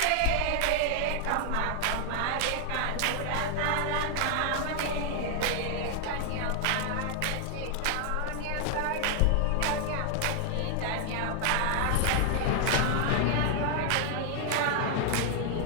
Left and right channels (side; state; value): both; different; correlation 0.00